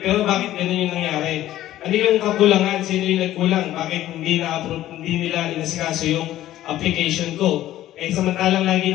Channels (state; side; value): quieter; right; 13.8 dB